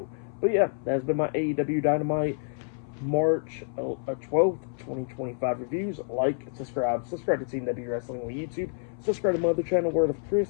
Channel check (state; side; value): silent; right; 59 dB below the other